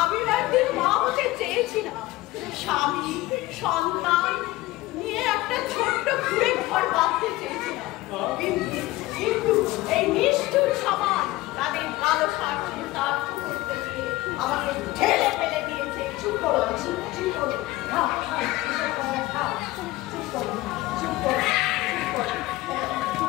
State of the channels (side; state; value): right; quieter; 18.5 dB